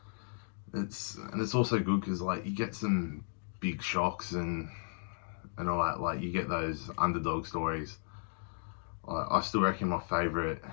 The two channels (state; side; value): silent; right; digital silence